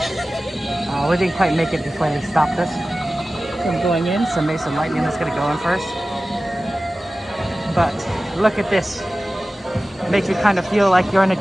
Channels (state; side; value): normal; both; correlation 0.96